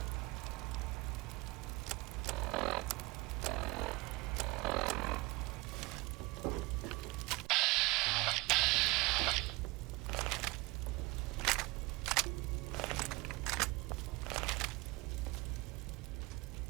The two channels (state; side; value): quieter; left; 23.7 dB